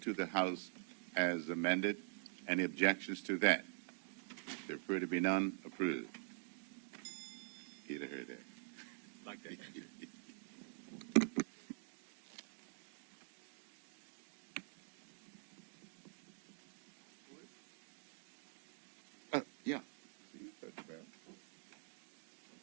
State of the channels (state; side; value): silent; left; digital silence